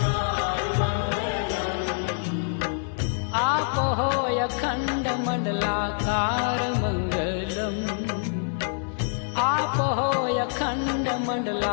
अखंड मंडलाकार मंगलम आप हो अखंड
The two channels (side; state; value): right; silent; digital silence